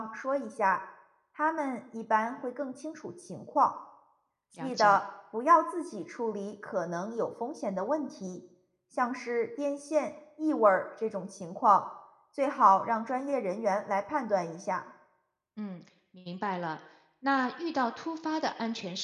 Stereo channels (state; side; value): identical; both; correlation 1.00